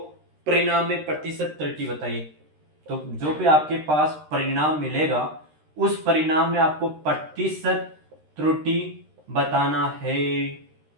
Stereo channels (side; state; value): left; late; 13 ms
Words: परिणाम में प्रतिशत त्रुटि बताइए। तो जो भी आपके पास परिणाम मिलेगा उस परिणाम में आपको प्रतिशत त्रुटि बताना है।